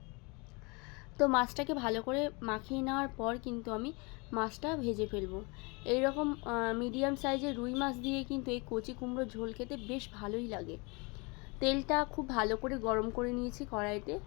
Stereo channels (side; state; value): right; quieter; 29.1 dB